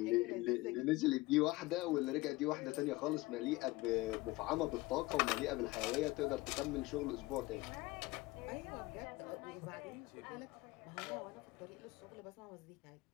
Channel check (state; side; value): quieter; right; 20.9 dB